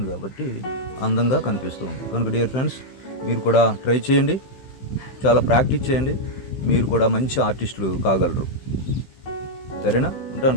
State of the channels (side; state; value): right; late; 15 ms